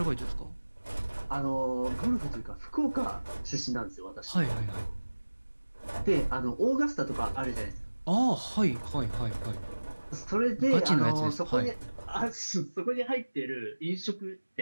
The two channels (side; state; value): both; inverted; correlation -1.00